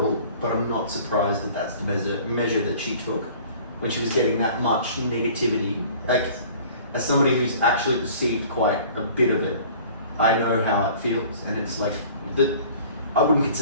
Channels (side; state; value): both; inverted; correlation -0.48